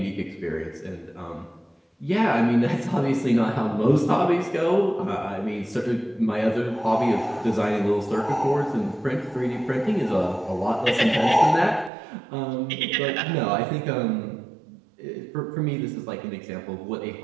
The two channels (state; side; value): drops out; left; at 11.9 s